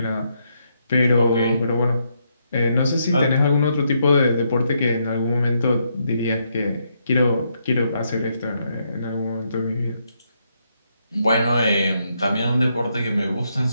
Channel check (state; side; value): inverted; both; correlation -0.78